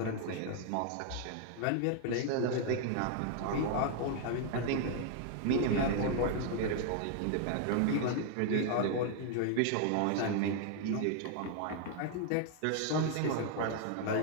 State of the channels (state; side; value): different; both; correlation 0.00